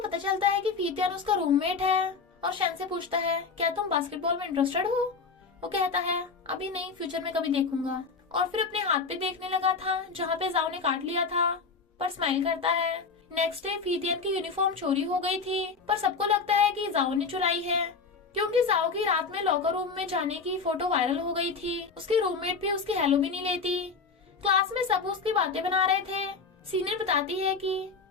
पता चलता है कि फीतियान उसका रूममेट है, और शन से पूछता है क्या तुम बास्केटबॉल में इंटरेस्टेड हो? वो कहता है अभी नहीं, फ्यूचर में कभी देखूंगा। और फिर अपने हाथ पे देखने लगा था जहाँ पे जाओ ने काट लिया था, पर स्माइल करता है। नेक्स्ट डे फीतियन की यूनिफॉर्म चोरी हो गई थी, पर सबको लगता है कि जाओ ने चुराई है, क्योंकि जाओ की रात में लॉकर रूम में जाने की फोटो वायरल हो गई थी। उसकी रूममेट भी उसकी हेलो भी नहीं लेती। क्लास में सब उसकी बातें बना रहे थे। सीनियर बताती है कि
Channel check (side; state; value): right; quieter; 4.8 dB